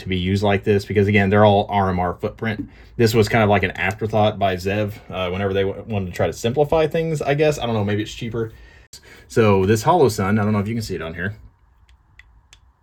be used like this, because again, they're all RMR footprint. This was kind of like an afterthought by Zev whenever they wanted to try to simplify things, I guess. I don't know, maybe it's cheaper. So this Hollow Sun, I don't know if you can see it on here.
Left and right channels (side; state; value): both; identical; correlation 1.00